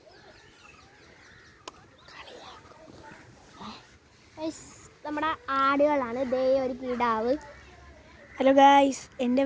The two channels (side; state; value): both; identical; correlation 1.00